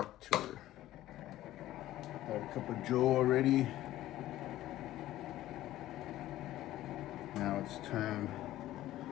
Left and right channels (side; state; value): right; quieter; 14.6 dB